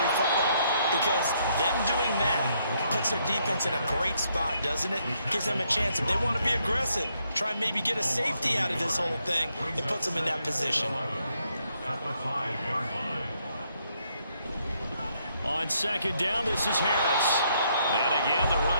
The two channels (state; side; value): inverted; both; correlation -0.74